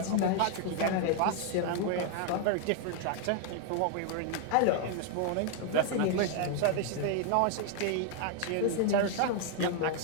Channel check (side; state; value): both; different; correlation 0.00